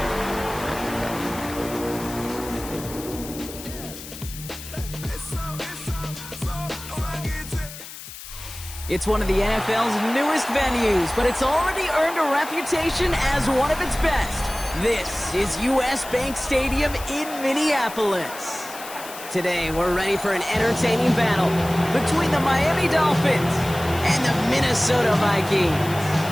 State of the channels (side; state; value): left; noise; hiss, 13 dB below the sound